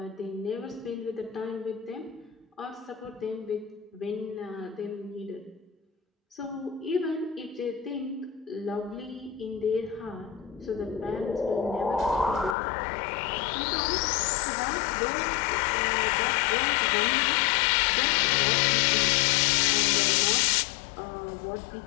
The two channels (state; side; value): drops out; right; at 12.6 s